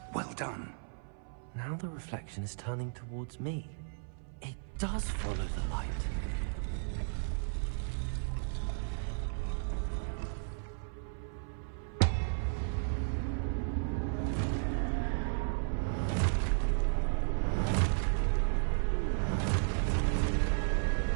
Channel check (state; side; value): silent; left; 55 dB below the other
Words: Well done. Now the reflection is turning towards me. It does follow the light.